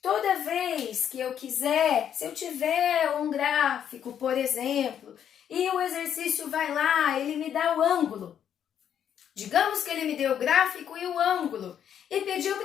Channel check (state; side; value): quieter; right; 9.2 dB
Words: Toda vez que eu quiser, se eu tiver um gráfico, por exemplo, e o exercício vai lá, ele me dá o ângulo. Digamos que ele me deu o gráfico e o ângulo e pediu